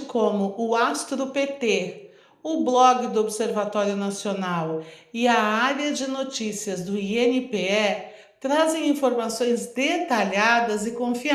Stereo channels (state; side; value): identical; both; correlation 1.00